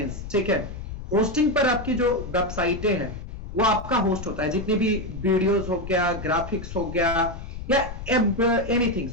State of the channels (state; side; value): noise; left; rumble, 10 dB below the sound